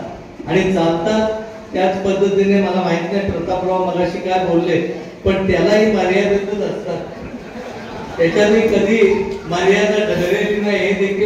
आणि चालतात त्याच पद्धतीने. मला माहित नाही प्रतापराव मगाशी काय बोलले, पण त्यालाही मर्यादितच असतात, त्याच्यातही कधी मर्यादा ठरलेली नाही, हे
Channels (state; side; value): identical; both; correlation 1.00